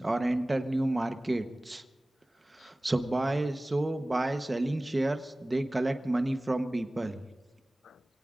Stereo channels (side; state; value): both; normal; correlation 0.98